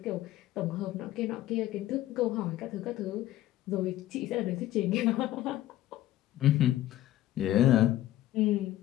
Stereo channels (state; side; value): quieter; right; 14.2 dB